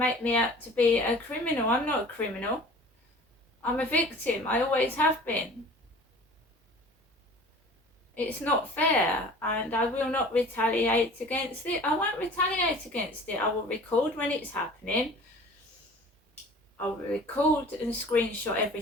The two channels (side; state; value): both; normal; correlation 0.45